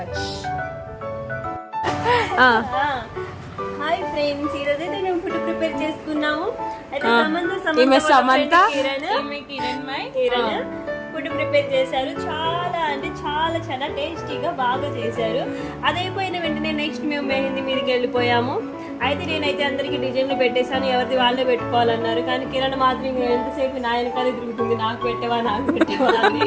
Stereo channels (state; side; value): identical; both; correlation 1.00